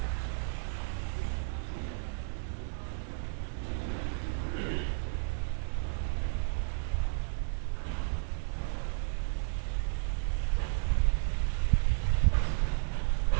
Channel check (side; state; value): left; silent; digital silence